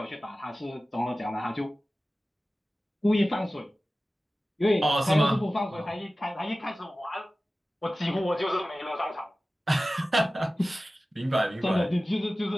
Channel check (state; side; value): normal; both; correlation 0.96